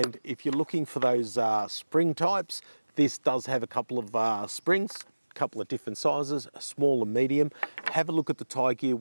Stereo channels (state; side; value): inverted; both; correlation -1.00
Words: if you're looking for those spring types, this does have a couple of springs, a couple of different sizes, a small and medium. Have a look at the Tiegear